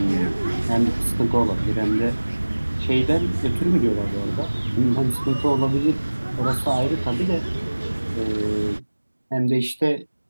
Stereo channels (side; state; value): both; inverted; correlation -1.00